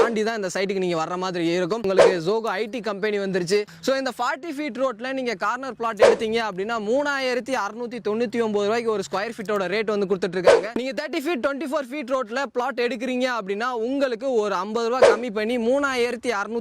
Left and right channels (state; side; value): identical; both; correlation 1.00